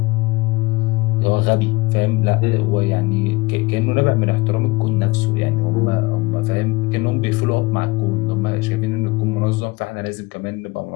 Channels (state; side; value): quieter; right; 22.5 dB